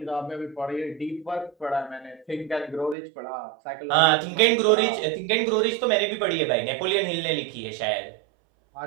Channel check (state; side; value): drops out; left; at 3.0 s